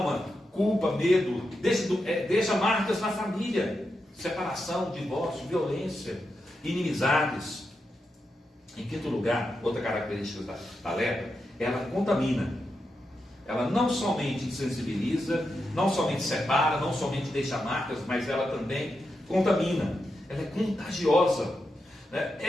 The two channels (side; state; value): both; normal; correlation 0.87